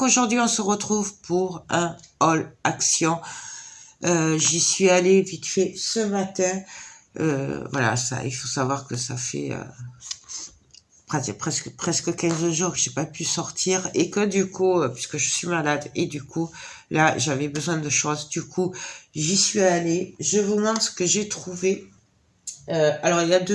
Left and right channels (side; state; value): both; identical; correlation 1.00